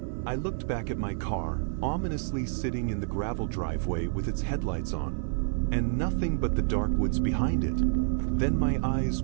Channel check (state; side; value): silent; left; digital silence